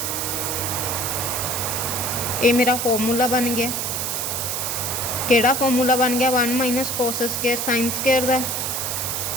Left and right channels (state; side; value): noise; right; hiss, 1 dB below the sound